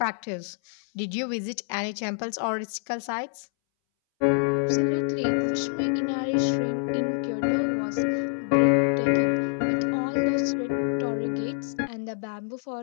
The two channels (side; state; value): right; silent; 61 dB below the other